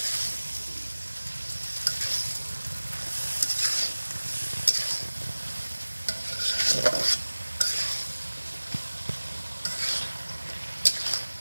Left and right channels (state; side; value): inverted; both; correlation -1.00